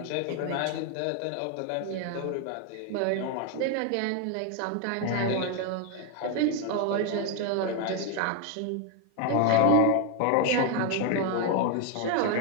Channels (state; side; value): different; both; correlation 0.01